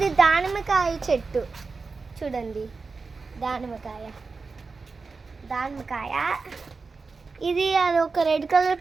దానిమ్మకాయ చెట్టు చూడండి, దానిమ్మకాయ. ఇది అది ఒక రెడ్ కలర్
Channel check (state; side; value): quieter; left; 4.4 dB